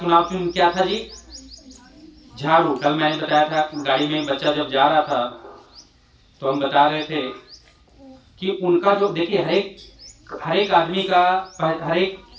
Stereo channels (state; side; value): identical; both; correlation 1.00